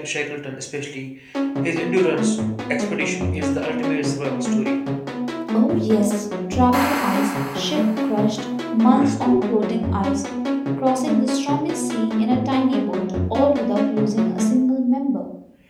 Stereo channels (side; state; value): both; identical; correlation 1.00